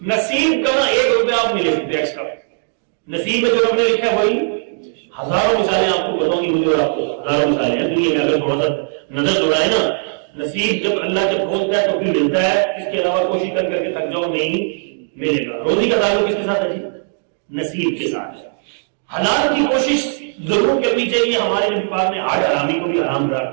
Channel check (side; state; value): left; silent; digital silence